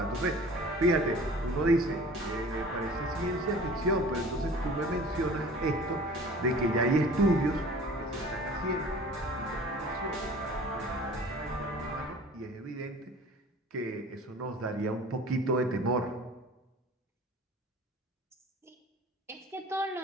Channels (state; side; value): normal; both; correlation 0.44